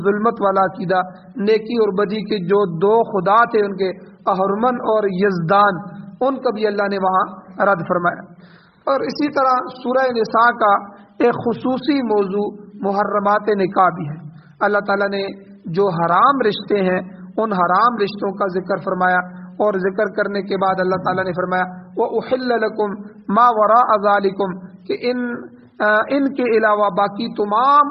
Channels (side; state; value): both; identical; correlation 1.00